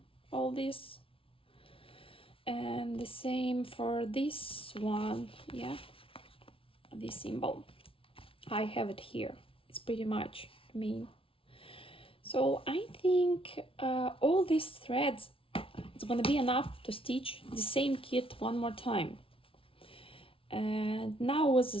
all this, and the same for this one. Yeah, this symbol I have it here. It's pretty much me. So I think all these threads, it's gonna be enough to stitch the same kit one more time. And now was the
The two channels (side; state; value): right; late; 0.26 ms